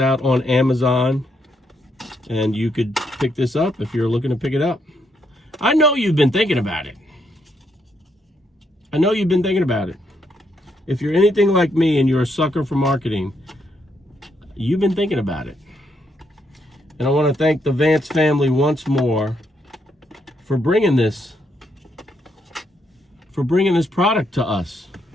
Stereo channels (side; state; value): both; normal; correlation 0.77